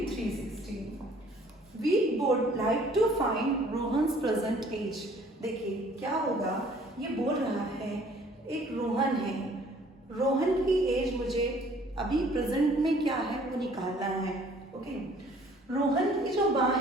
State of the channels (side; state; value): both; normal; correlation 0.56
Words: 360. We would like to find Rohan's present age. देखिए क्या होगा, ये बोल रहा है एक रोहन है, रोहन की एज मुझे अभी प्रेजेंट में क्या है वो निकालना है. ओके, रोहन की जो माँ